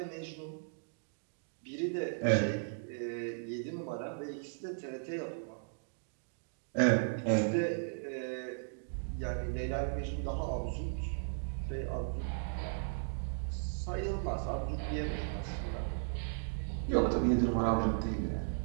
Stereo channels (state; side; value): silent; left; digital silence